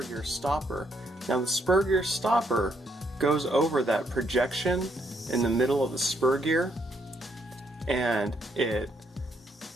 gear stopper. Now the spur gear stopper goes over that projection in the middle of the spur gear, and it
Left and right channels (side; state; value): both; normal; correlation 0.74